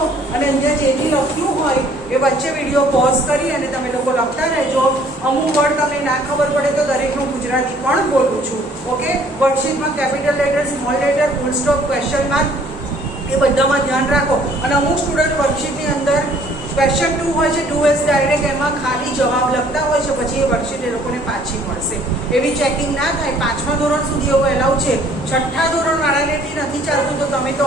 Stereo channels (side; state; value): both; normal; correlation 0.58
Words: અને અહીંયા જે બી લખ્યું હોય એ વચ્ચે વિડીયો પોઝ કરી અને તમે લોકો લખતા રહેજો. અમુક વર્ડ તમને ના ખબર પડે તો દરેકનું ગુજરાતી પણ બોલું છું. ઓકે, વર્કશીટમાં capital letter, small letter, full stop, question mark એ બધામાં ધ્યાન રાખો. અને અમુક સ્ટુડન્ટ વર્કશીટની અંદર ક્વેશ્ચન 2 હોય છે, 2S ડાયરેક્ટ એમાં ખાલી જવાબ લખતા હોય છે, પછી એ વર્કશીટ એ લોકોને પાછી મળશે. એવી ચેકિંગ ના થાય. 5મા ધોરણ સુધી એવું એલાઉ છે. 6ઠ્ઠા ધોરણવાળાને નથી ચાલતું તો તમે તો